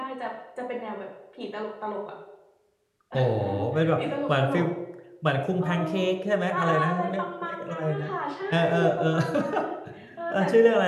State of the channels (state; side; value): identical; both; correlation 1.00